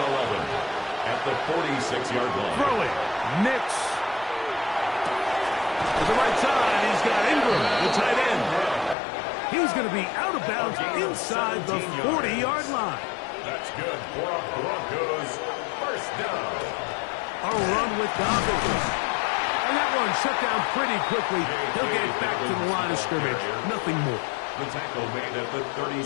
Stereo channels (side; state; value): right; drops out; at 9.0 s